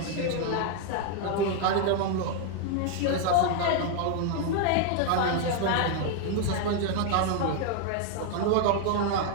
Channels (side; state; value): both; different; correlation 0.00